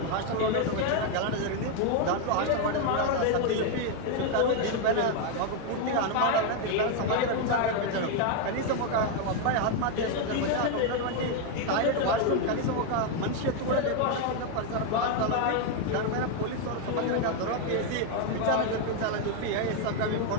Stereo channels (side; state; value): both; different; correlation 0.01